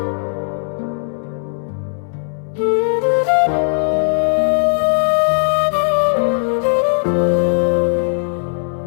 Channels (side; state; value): right; silent; digital silence